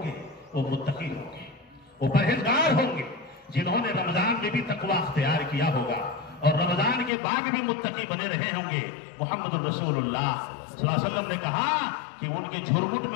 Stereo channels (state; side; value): drops out; right; at 7.1 s